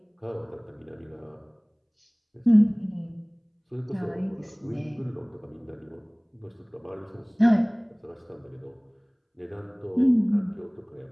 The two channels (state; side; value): identical; both; correlation 1.00